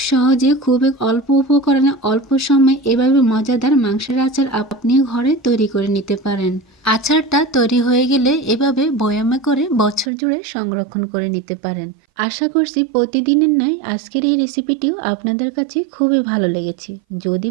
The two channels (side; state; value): left; drops out; at 10.1 s